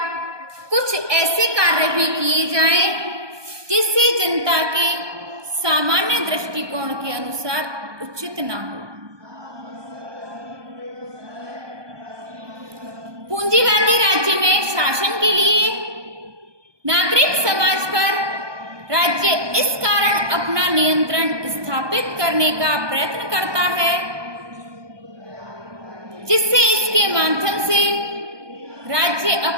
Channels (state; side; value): late; left; 1.2 ms